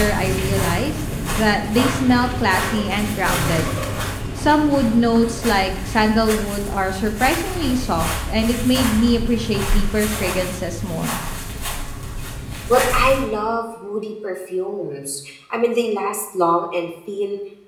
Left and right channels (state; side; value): identical; both; correlation 1.00